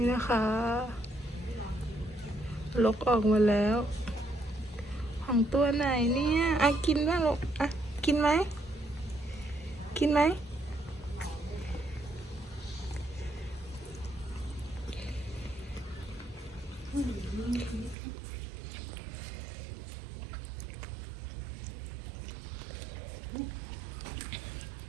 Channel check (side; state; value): left; drops out; at 17.9 s